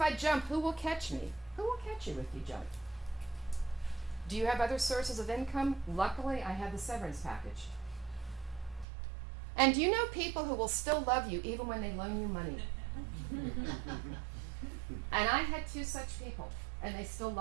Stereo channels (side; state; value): left; drops out; at 8.8 s